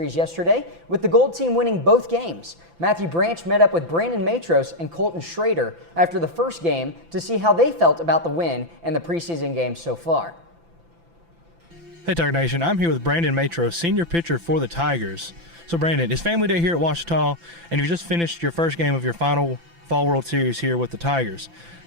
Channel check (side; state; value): left; late; 5.9 ms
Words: yesterday, with the Gold team winning both games. Matthew Branch met up with Brandon Matros and Colton Shrader after the first game to see how they felt about the win and the preseason games so far. Hey Tiger Nation, I'm here with Brandon Matros, senior pitcher for the Tigers. So Brandon, it's family day here at Ouachita, and you just finished your first game of your final Fall World Series here with the Tigers.